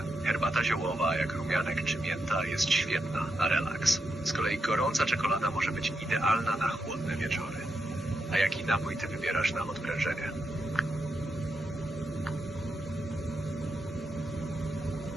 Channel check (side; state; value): both; normal; correlation 0.84